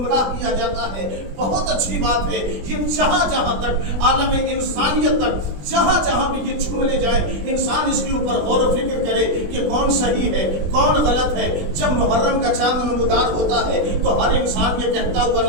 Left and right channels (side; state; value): left; late; 20 ms